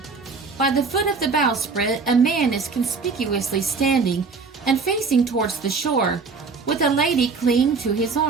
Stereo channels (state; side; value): quieter; left; 4.7 dB